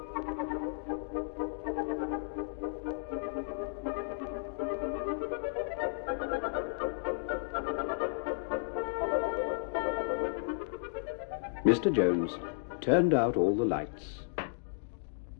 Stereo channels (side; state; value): right; silent; digital silence